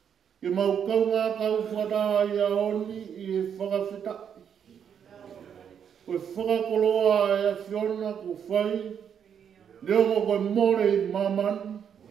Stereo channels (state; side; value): quieter; left; 8.1 dB